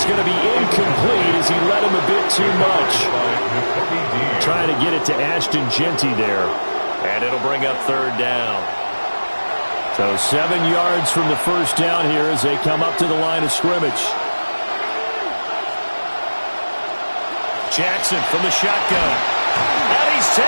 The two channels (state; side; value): inverted; both; correlation -1.00